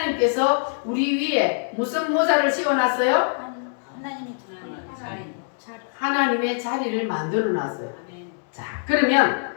우리 위에 무슨 모자를 씌워놨어요? 하나님의 자리를 만들어 놨어요. 자, 그러면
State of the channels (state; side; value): silent; right; 63 dB below the other